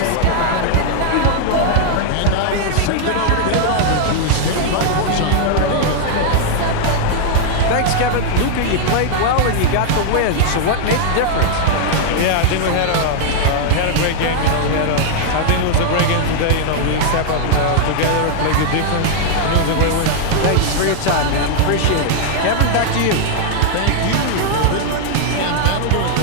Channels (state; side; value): different; both; correlation 0.00